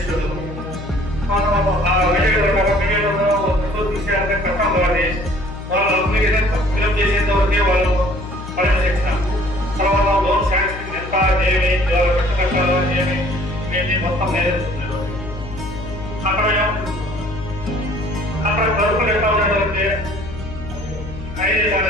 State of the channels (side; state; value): left; noise; hum, 11 dB below the sound